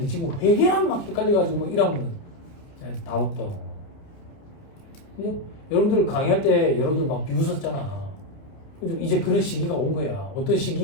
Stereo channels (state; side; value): late; right; 29 ms